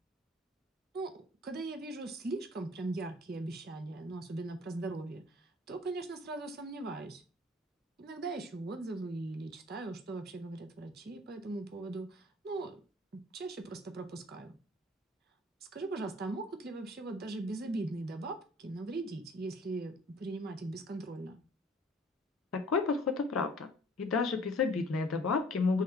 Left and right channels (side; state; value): both; normal; correlation 0.53